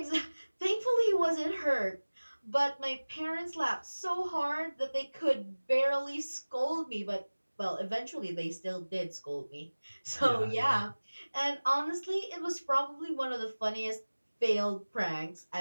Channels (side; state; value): both; inverted; correlation -1.00